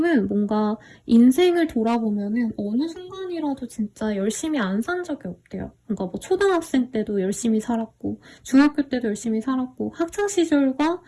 뭔가 인생을 돌아보면은 어느 순간이라도 진짜 열심히 안 산 적이 없대요. 그러니까 뭐 초등학생 때도 열심히 살았고 중학교 때도 열심히 살았고 학창시절과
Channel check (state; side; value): identical; both; correlation 1.00